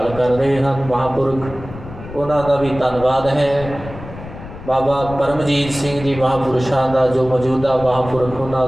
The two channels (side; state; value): left; noise; rumble, 13 dB below the sound